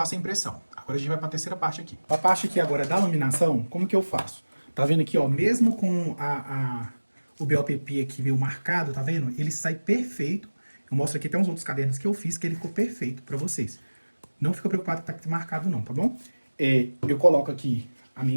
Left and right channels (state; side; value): inverted; both; correlation -1.00